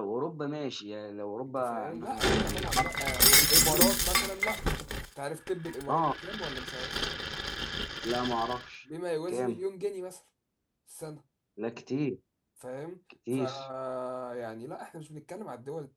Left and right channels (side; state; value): both; identical; correlation 1.00